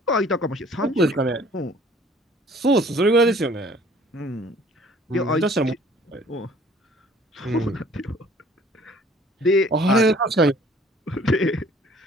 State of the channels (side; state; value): both; normal; correlation 0.54